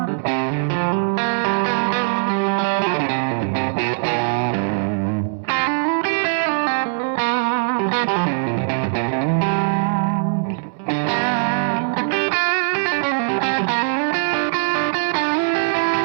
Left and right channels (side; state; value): left; silent; digital silence